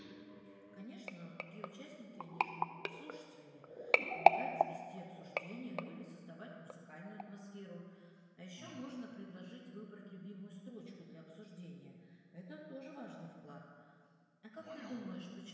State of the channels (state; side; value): identical; both; correlation 1.00